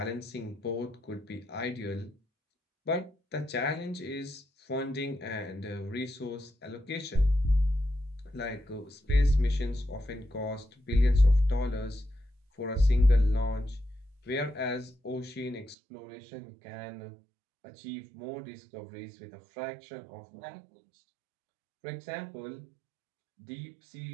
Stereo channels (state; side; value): drops out; left; at 15.8 s